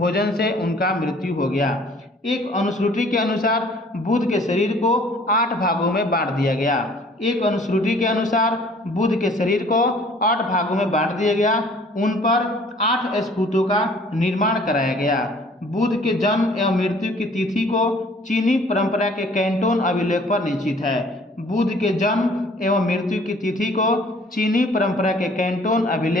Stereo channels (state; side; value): normal; both; correlation 0.55